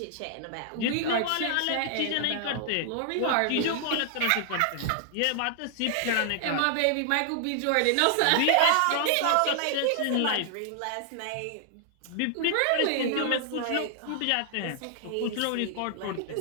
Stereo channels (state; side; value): different; both; correlation 0.00